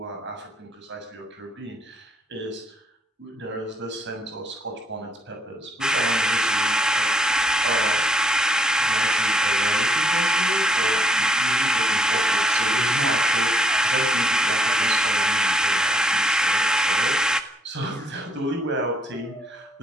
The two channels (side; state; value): both; normal; correlation 0.70